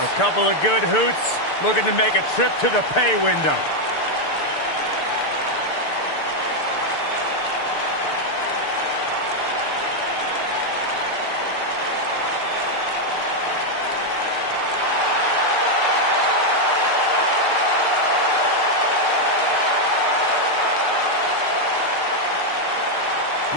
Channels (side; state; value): right; late; 6.7 ms